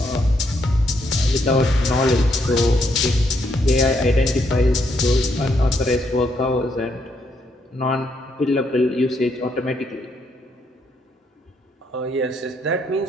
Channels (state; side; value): normal; both; correlation 0.75